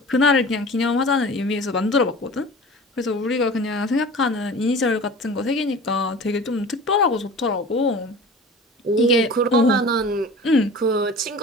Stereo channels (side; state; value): both; normal; correlation 0.39